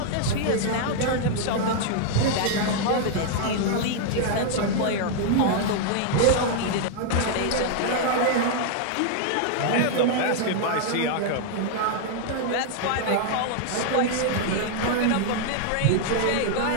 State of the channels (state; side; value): different; both; correlation 0.00